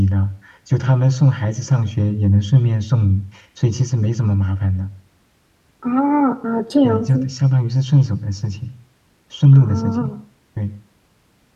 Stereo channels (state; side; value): identical; both; correlation 1.00